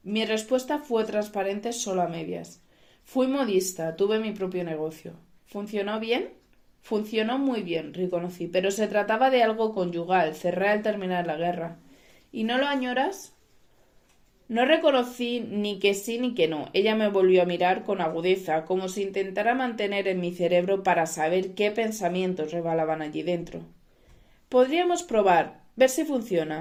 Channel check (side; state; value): both; identical; correlation 1.00